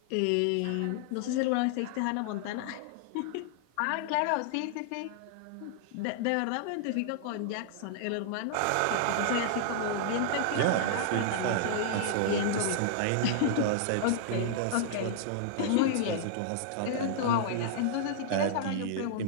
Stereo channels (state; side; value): different; both; correlation -0.01